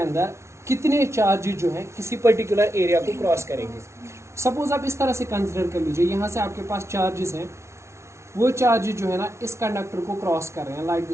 कितने चार्जेस जो हैं किसी पर्टिकुलर एरिया को क्रॉस करेंगे। सपोज आप इस तरह से कंसिडर कर लीजिए, यहाँ से आपके पास चार्जेस हैं, वो चार्जेस जो है ना इस कंडक्टर को क्रॉस कर रहे हैं like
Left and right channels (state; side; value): late; left; 0.13 ms